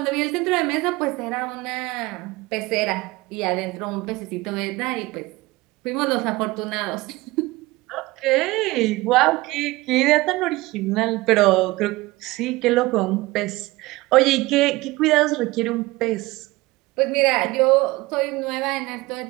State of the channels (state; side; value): quieter; left; 20.7 dB